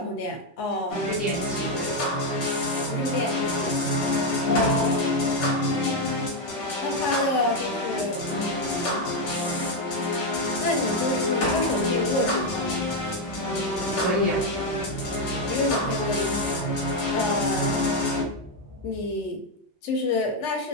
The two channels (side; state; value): both; normal; correlation 0.04